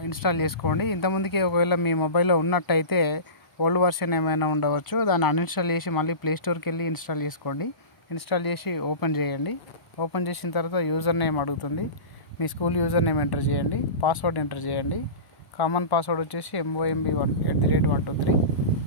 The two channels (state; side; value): late; right; 1.0 ms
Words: ఇన్స్టాల్ చేసుకోండి. ఇంతకుముందుకే ఒకవేళ మీ మొబైల్లో ఉన్నట్టయితే ఓల్డ్ వర్షన్ ఏమైనా ఉండవచ్చు, దాన్ని అన్ఇన్స్టాల్ చేసి మళ్ళీ ప్లేస్టోర్కి వెళ్ళి ఇన్స్టాల్ చేసుకోండి. ఇన్స్టాల్ చేసి ఓపెన్ చేయండి. ఓపెన్ చేసిన తర్వాత యూజర్ నేమ్ అడుగుతుంది. మీ స్కూల్ యూజర్ నేమ్ ఎంటర్ చేయండి. పాస్వర్డ్ ఎంటర్ చేయండి. కామన్ పాస్వర్డ్ వచ్చేసి MOMB1@123.